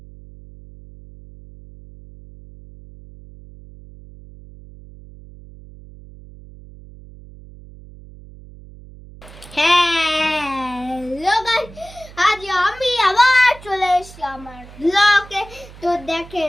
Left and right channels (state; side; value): noise; right; hum, 19 dB below the sound